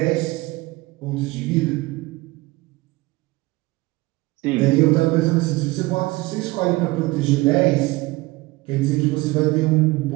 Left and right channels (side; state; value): left; quieter; 21.1 dB